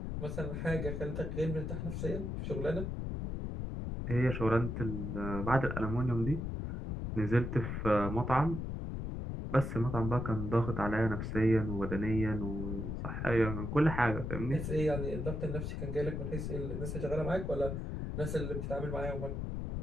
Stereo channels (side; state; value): left; noise; rumble, 4 dB below the sound